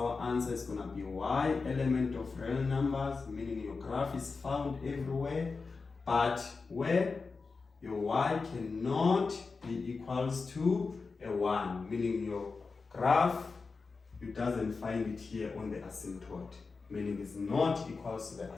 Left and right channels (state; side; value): quieter; right; 4.4 dB